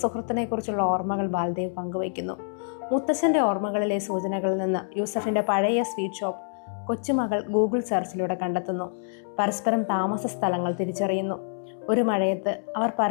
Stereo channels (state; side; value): silent; right; 61 dB below the other